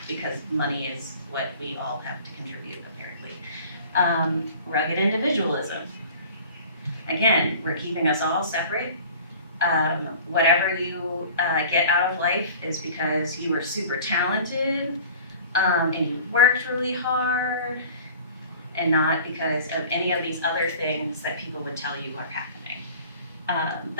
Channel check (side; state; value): both; inverted; correlation -0.43